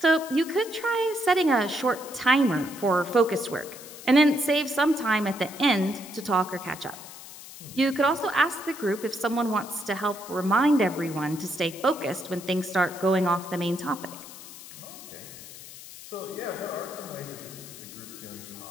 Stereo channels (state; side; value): noise; left; hiss, 15 dB below the sound